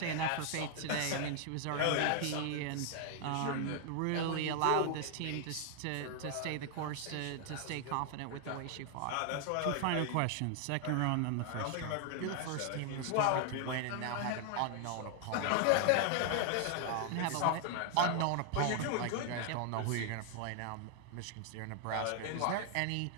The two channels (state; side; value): different; both; correlation 0.00